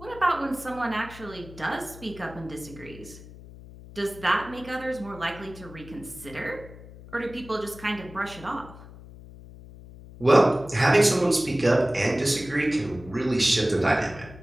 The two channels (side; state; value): left; noise; hum, 17 dB below the sound